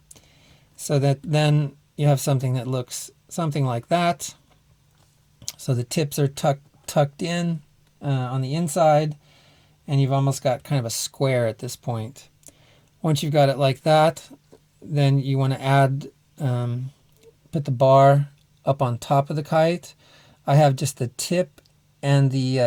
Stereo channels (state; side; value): identical; both; correlation 1.00